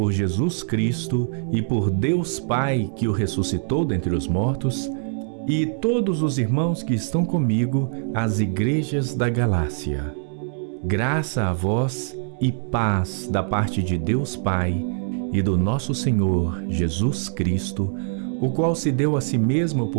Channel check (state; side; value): silent; left; digital silence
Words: Jesus Cristo e por Deus Pai que o ressuscitou dentre os mortos, e todos os irmãos que estão comigo, às igrejas da Galácia. Graça a vós e paz da parte de Deus Pai e do nosso Senhor Jesus Cristo, o qual se deu a si mesmo